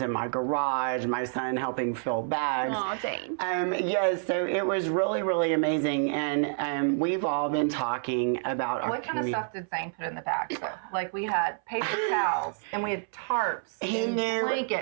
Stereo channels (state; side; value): silent; left; 59 dB below the other